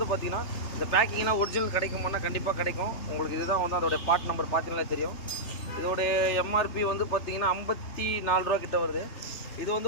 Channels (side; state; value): right; late; 3.2 ms